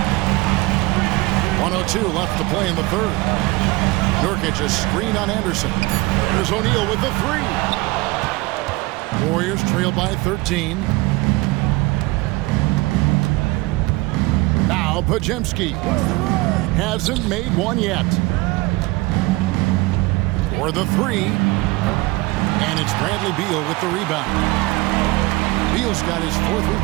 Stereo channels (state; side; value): quieter; left; 22.0 dB